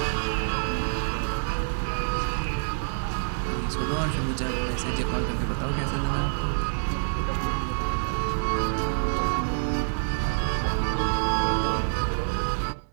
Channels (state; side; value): silent; left; digital silence